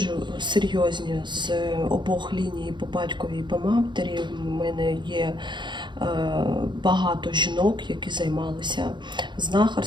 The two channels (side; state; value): left; late; 0.22 ms